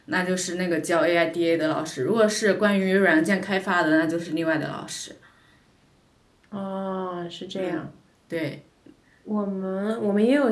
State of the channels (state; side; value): identical; both; correlation 1.00